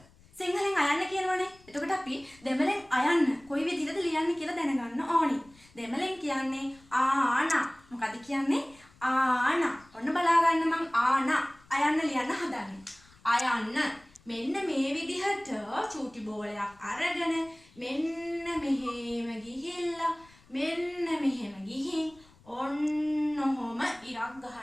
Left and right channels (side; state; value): left; noise; rumble, 27 dB below the sound